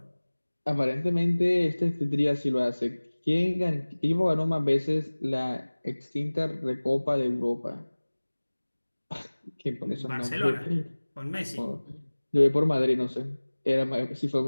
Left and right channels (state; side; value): inverted; both; correlation -1.00